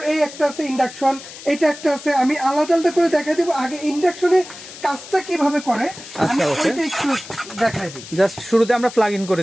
এই একটা আছে ইন্ডাকশন, এটা একটা আছে। আমি আলাদা আলাদা করে দেখাই দিব। আগে ইন্ডাকশনের কাজটা কিভাবে করে আমি ওইটা একটু দেখাই দিই। জাস্ট শুরুতে আমরা প্লাগ ইন করে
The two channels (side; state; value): left; noise; hiss, 15 dB below the sound